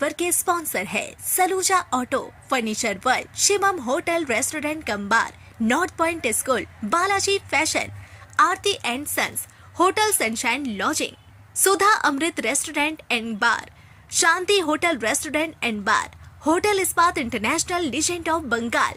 के sponsor है Saluja auto, furniture world, Shivam hotel restaurant cum bar, north point school, Balaji fashion, Aarti and sons, hotel sunshine lodging, Sudha Amrit restaurant and bar, Shanti hotel restaurant and bar, hotel Ispat international legend of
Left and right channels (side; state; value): both; identical; correlation 1.00